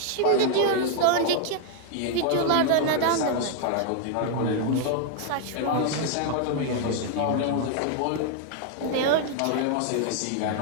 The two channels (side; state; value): both; different; correlation 0.00